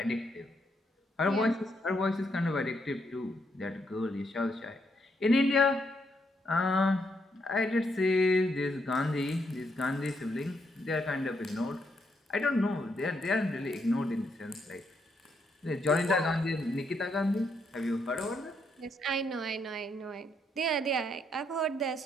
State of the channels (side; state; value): both; normal; correlation 0.76